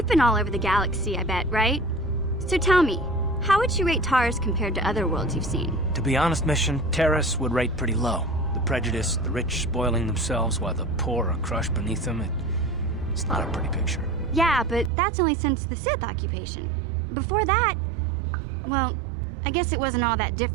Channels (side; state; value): left; drops out; at 14.9 s